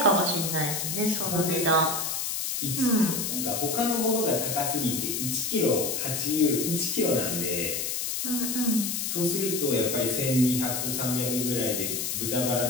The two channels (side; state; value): left; noise; hiss, 1 dB below the sound